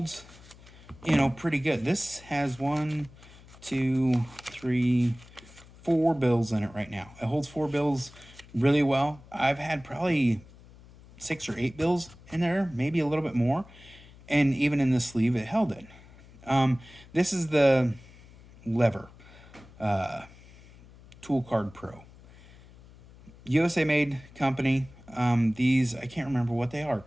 pretty good. This has 1, 2, 3, 4 bills in it right now. It holds 4 bills really well. I've had probably 6 or 8 bills in there, maybe a little bit more. And even in the sleeve, it held it. This is the lever Tool Card Pro. USA made company. These, I can't remember what they are,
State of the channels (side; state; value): left; noise; hum, 22 dB below the sound